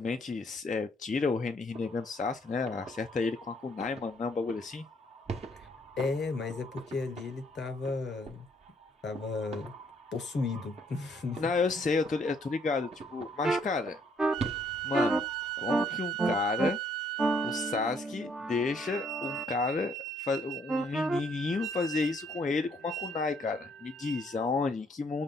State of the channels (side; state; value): both; normal; correlation 0.67